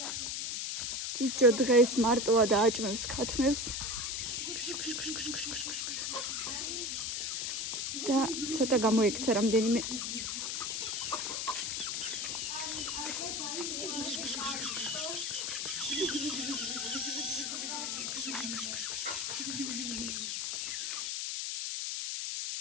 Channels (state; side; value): noise; left; hiss, 1 dB below the sound